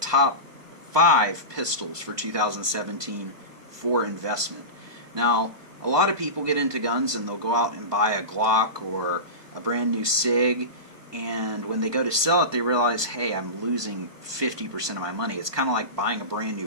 5 pistols for 2017 for investment. Now, a lot of people get into guns and they'll go out and buy a Glock or a brand new SIG, and when they go to sell it, they realize, hey, I'm losing 50% of my money. It's kind of like buying a brand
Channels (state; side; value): late; left; 1.2 ms